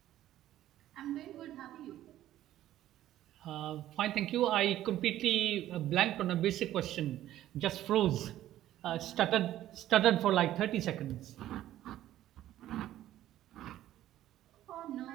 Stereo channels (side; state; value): left; quieter; 13.2 dB